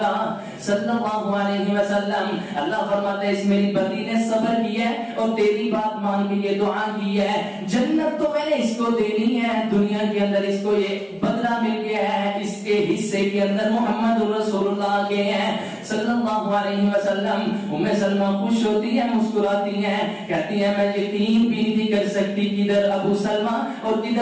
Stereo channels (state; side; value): identical; both; correlation 1.00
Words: صلی اللہ علیہ وسلم. اللہ فرماتا ہے اس میری بندی نے صبر کیا ہے اور تیری بات مان کے یہ دعا کی ہے, جنت تو میں نے اس کو دینی ہے, دنیا کے اندر اس کو یہ بدلہ مل گیا ہے, اس کے حصے کے اندر محمد رسول اللہ کے ہیں صلی اللہ علیہ وسلم. اُمّ سلمہ خوش ہوتی ہے, مسکراتی ہیں, کہتی ہے میں یقین بھی نہیں کر سکتی کدھر ابو سلمہ اور